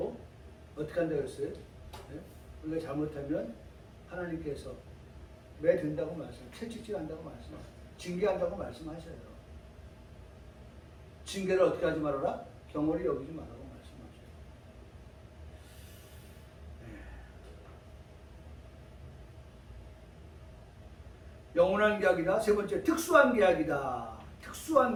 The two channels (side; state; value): both; identical; correlation 1.00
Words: 어떻게 한다고 했어요? 네? 우리가 잘못하면 하나님께서 매든다고 채찍질한다고 말씀하세요. 징계한다고 말씀하셔요. 징계를 어떻게 하지 말아라? 경홀히 여기지 말라고 말씀하셔요. 네. 영원한 계약이다. 세 번째, 특수한 계약이다.